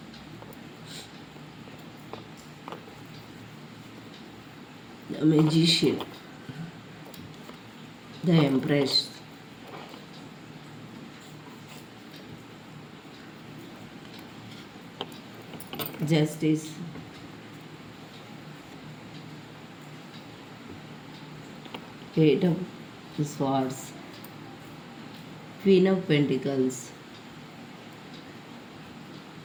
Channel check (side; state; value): both; identical; correlation 1.00